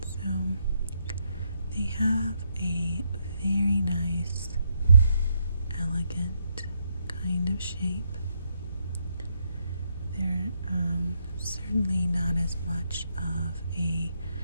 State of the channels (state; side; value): inverted; both; correlation -0.77